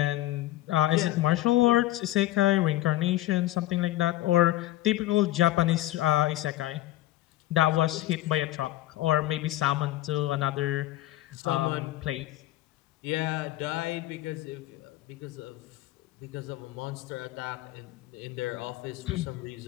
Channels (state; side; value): quieter; right; 15.8 dB